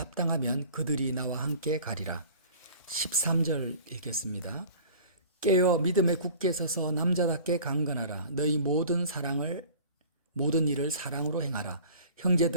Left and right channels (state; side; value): inverted; both; correlation -0.44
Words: 그들이 나와 함께 가리라. 13절 읽겠습니다. 깨어 믿음에 굳게 서서 남자답게 강건하라. 너희 모든 일을 사랑으로 행하라.